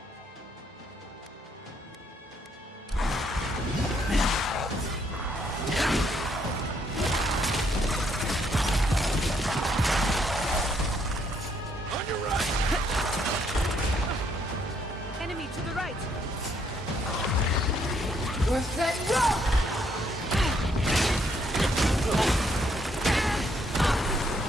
On your right! Enemy to the right! Worth that rock!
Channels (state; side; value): normal; both; correlation 0.71